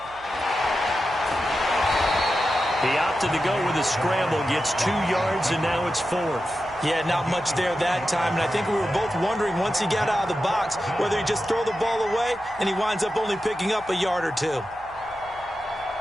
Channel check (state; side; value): noise; right; hum, 24 dB below the sound